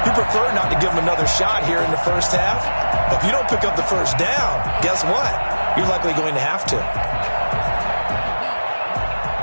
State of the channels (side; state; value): both; inverted; correlation -1.00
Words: you prefer not to give them another shot here in the first half. But if you don't pick up the first down, guess what? You're likely going to have to.